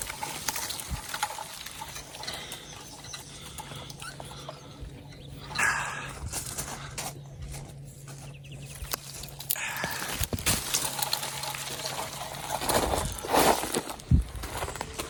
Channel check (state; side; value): identical; both; correlation 1.00